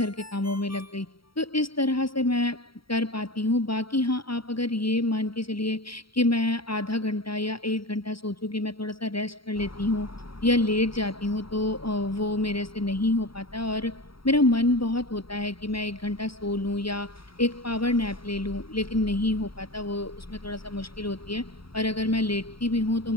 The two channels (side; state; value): right; late; 0.75 ms